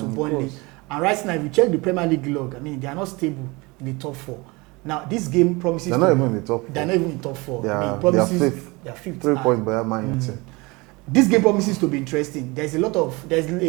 Burnley. And right now, if you check the Premier League log, I mean, they are not stable in the top four. Now, this game promises they're not even in the top four. I mean, it promises they are fifth. 3 points behind Man United. This game promises to be interesting. There's a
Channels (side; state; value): left; quieter; 24.9 dB